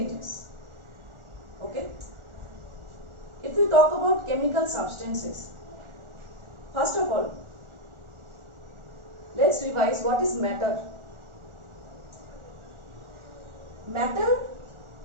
Okay? If we talk about chemical substances, first of all, let's revise what is matter. Matter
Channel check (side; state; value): left; late; 1.4 ms